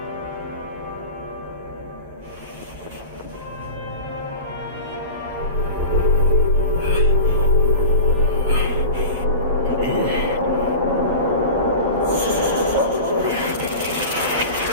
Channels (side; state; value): both; inverted; correlation -0.32